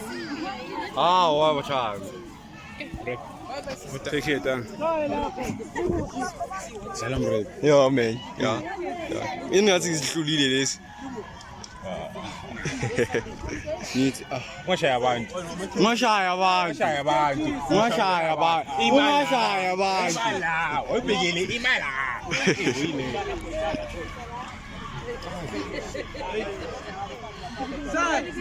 Ah, wa cha. Take it down. Salam bro. Ja man. Ja. Ingathi isihlulile lesi. Nithi Ngashaya abantu. La, oyibhekele imali.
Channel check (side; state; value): both; identical; correlation 1.00